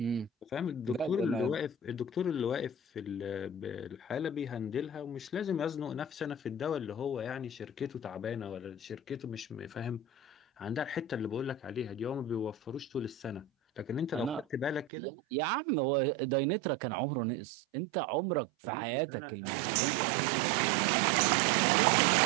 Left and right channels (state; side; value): drops out; left; at 14.9 s